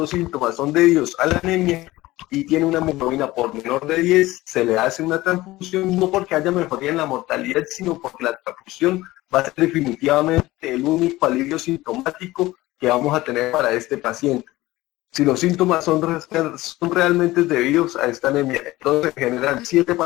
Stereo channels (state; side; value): quieter; right; 18.2 dB